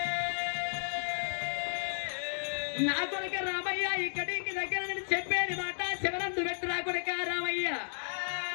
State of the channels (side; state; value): right; silent; digital silence